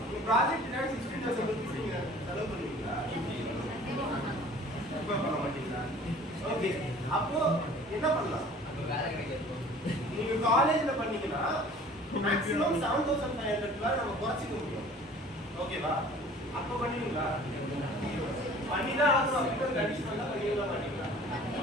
உங்க ப்ராஜெக்ட் 16,000 rupees நீங்க செலவு பண்ணுவீங்களா? இப்ப பண்ண மாட்டீங்களா? ஓகே, அப்போ என்ன பண்ணலாம்? வேலை கிடைக்காது. நீங்க காலேஜ்ல பண்ணீங்கன்னா மேக்ஸிமம் 7,500 நம்ம குறைச்சிக்க முடியும். ஓகேவா? அப்போ பண்ணுவீங்களா? பண்ணிதான் ஆகணும் அப்படின்னு ஒரு கண்டிஷன் தான் பண்ணிங்களா மாட்டீங்களா?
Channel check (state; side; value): normal; both; correlation 0.48